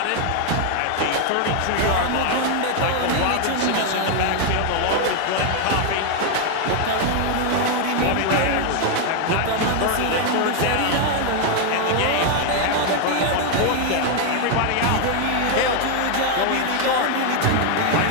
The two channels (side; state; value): both; different; correlation 0.00